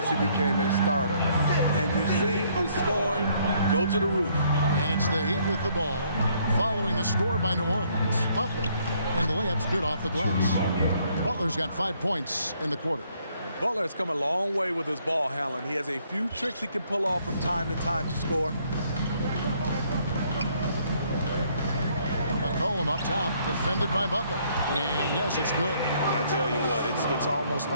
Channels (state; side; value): inverted; both; correlation -0.67